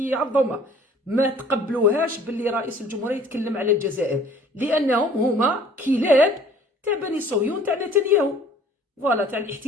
ما تقبلوهاش باللي رئيس الجمهورية يتكلم على الجزائر لأنهم هما كلاب تاع بني صهيون تاع نتنياهو فوالا تاع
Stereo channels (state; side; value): normal; both; correlation 0.53